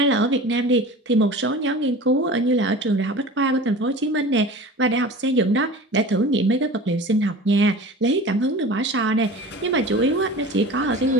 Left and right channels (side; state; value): both; normal; correlation 0.37